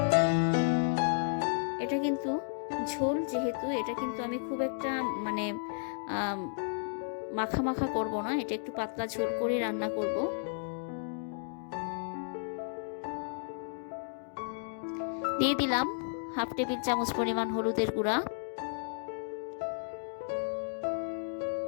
এটা কিন্তু ঝোল যেহেতু, এটা কিন্তু আমি খুব একটা মাখা মাখা করব না, এটা একটু পাতলা ঝোল করে রান্না করব। দিয়ে দিলাম 1/2 টেবিল চামচ পরিমাণ হলুদের গুঁড়া,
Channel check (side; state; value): right; silent; digital silence